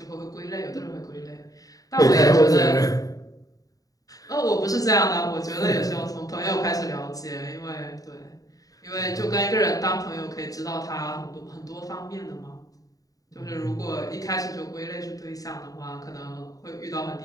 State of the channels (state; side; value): late; right; 0.17 ms